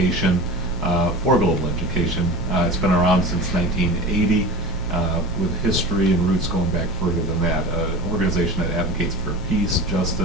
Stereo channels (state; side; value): normal; both; correlation 0.33